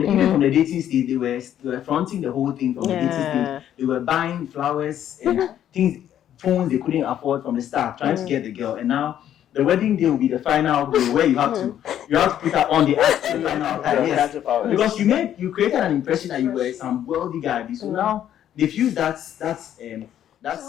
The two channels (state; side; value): quieter; right; 10.7 dB